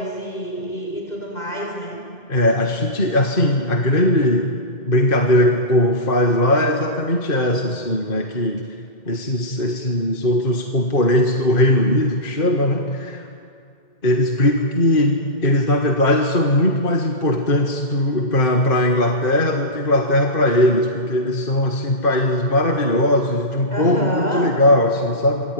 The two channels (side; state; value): right; late; 2.1 ms